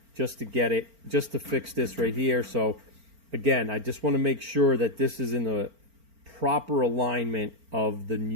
just to fix this right here. So again, I just want to make sure that this is in the proper alignment of the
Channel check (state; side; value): late; left; 4.4 ms